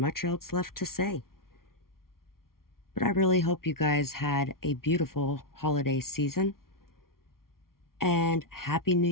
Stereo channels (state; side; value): late; right; 0.93 ms